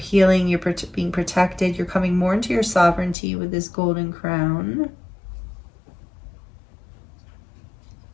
you're being protected, you're coming more into your sovereignty with this golden crown.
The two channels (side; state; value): right; drops out; at 3.2 s